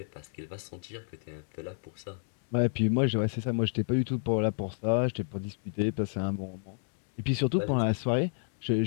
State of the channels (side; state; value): right; silent; digital silence